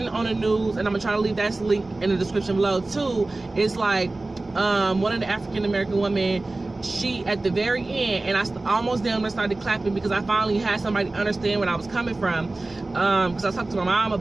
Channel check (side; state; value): left; quieter; 3.0 dB